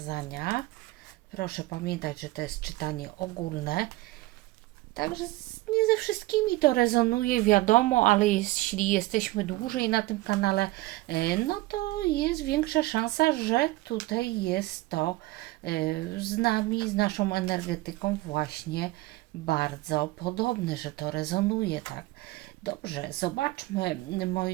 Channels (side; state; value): left; quieter; 19.3 dB